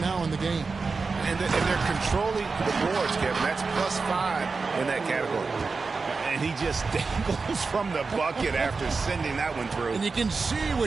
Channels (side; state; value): left; quieter; 4.4 dB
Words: in the game. And they're controlling the boards, Kevin. That's +5 in that category. And he just dangles from the bucket after sending that one through. And you can see